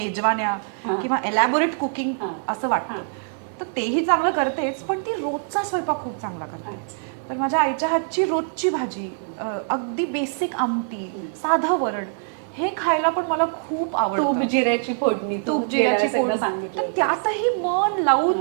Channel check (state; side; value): silent; left; 63 dB below the other